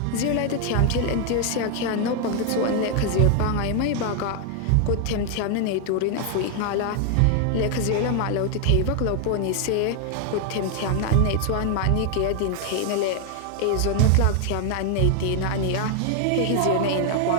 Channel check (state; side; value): different; both; correlation 0.00